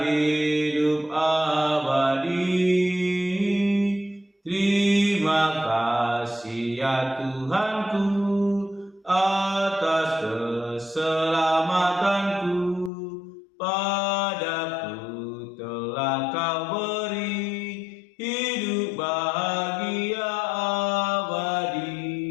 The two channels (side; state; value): right; drops out; at 12.9 s